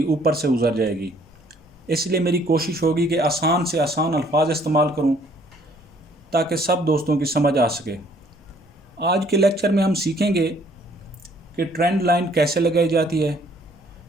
ऊपर से गुजर जाएगी। इसलिए मेरी कोशिश होगी कि आसान से आसान अल्फाज इस्तेमाल करूं ताकि सब दोस्तों की समझ आ सके। आज के लेक्चर में हम सीखेंगे कि ट्रेंड लाइन कैसे लगाई जाती है।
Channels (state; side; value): normal; both; correlation 0.61